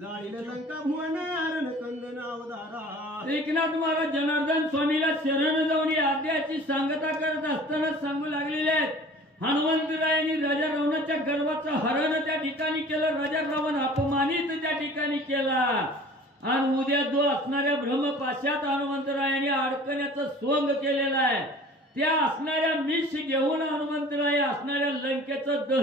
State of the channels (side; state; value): both; normal; correlation 0.46